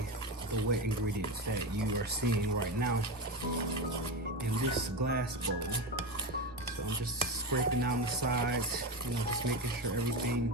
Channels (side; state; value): both; normal; correlation 0.18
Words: the wet ingredients that you are seeing right now in this glass bowl. So I'm just scraping down the sides, you know, just making sure everything